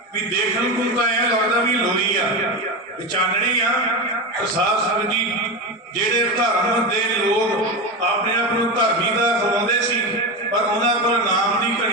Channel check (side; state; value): both; normal; correlation 0.18